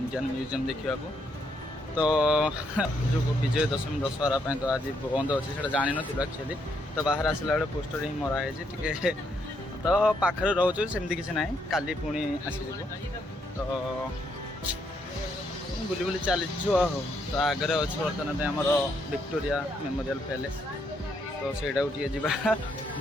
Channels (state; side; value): normal; both; correlation 0.75